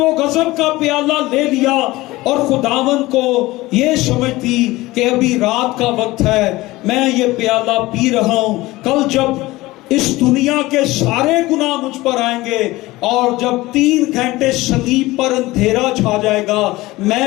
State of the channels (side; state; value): right; quieter; 19.2 dB